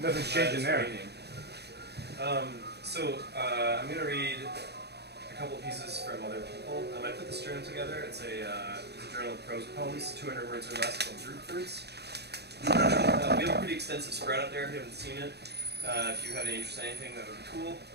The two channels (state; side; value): late; left; 0.48 ms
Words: Nothing's changing there. I'm going to read a couple of pieces from other people. I put this journal together. It's a journal of prose poems, 200 words or less, called Drupe Fruits. We have a pretty extensive spread out there if you haven't seen it. If you have any interest in anything, that would be cool.